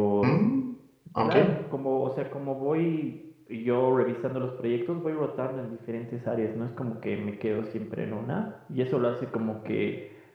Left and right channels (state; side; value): identical; both; correlation 1.00